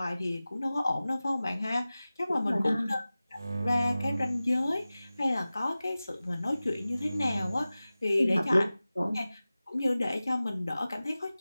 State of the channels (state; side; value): inverted; both; correlation -0.97